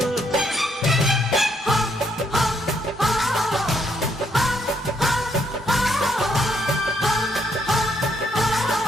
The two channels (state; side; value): normal; both; correlation 0.73